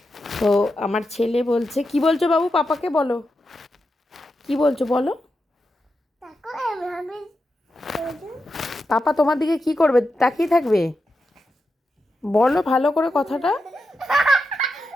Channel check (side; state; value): both; normal; correlation 0.88